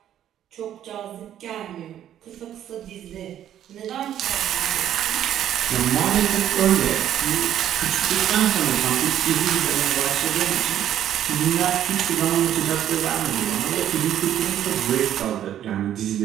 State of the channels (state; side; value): quieter; left; 10.9 dB